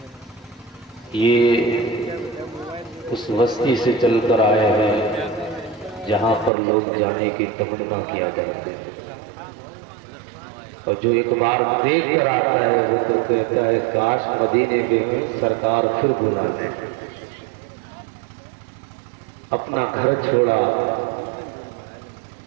یہ اس بستی سے چل کر آئے ہیں جہاں پر لوگ جانے کی تمنا کیا کرتے ہیں، اور جو ایک بار دیکھ کر آتا ہے وہ تو کہتا ہے کاش مدینے میں سرکار پھر بلا دیں۔ اپنا گھر چھوڑا،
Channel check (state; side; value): drops out; left; at 6.5 s